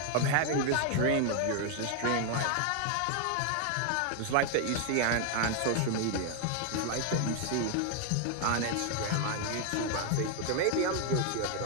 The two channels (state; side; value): different; both; correlation 0.00